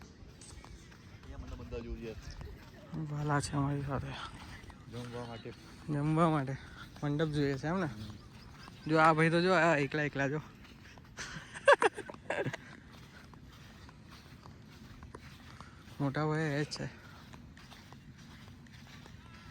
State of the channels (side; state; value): both; identical; correlation 1.00